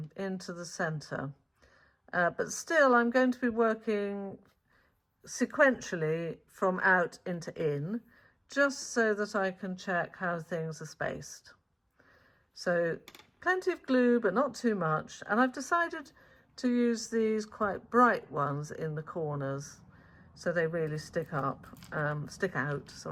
into the centre. But still I'm going to be working sequentially from out into in, just so that I can check how things are spaced. So plenty of glue, but not too much. And I've decided to use these quite bright ones in the corners so they really stick out,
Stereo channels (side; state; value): both; identical; correlation 1.00